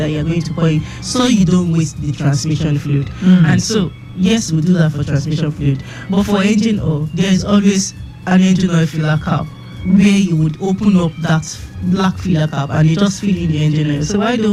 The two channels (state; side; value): identical; both; correlation 1.00